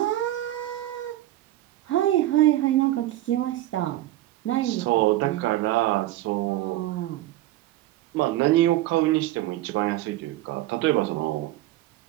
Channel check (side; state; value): left; quieter; 15.3 dB